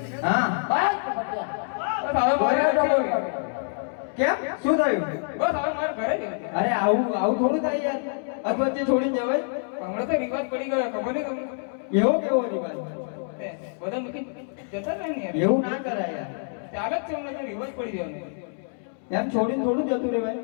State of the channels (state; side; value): silent; right; 61 dB below the other